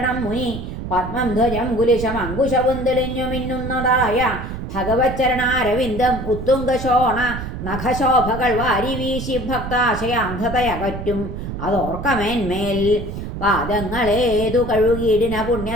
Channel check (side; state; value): right; noise; rumble, 7 dB below the sound